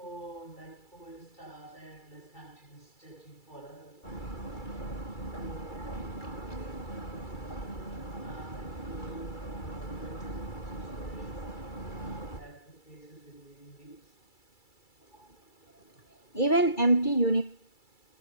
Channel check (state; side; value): late; right; 2.3 ms